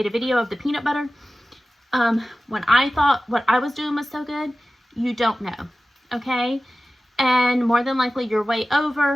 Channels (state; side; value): normal; both; correlation 0.96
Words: a video of the peanut butter. When I thought what I was doing was so good, you don't know, okay? And more than likely you're way